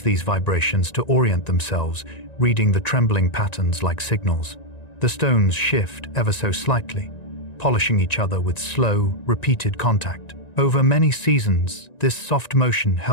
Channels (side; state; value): right; late; 1.9 ms